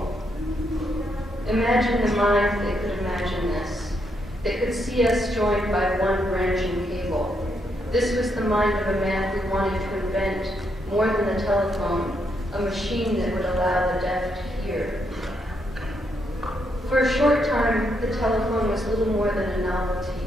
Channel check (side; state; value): both; normal; correlation 0.78